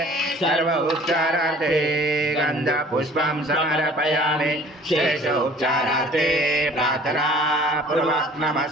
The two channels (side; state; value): both; normal; correlation 0.50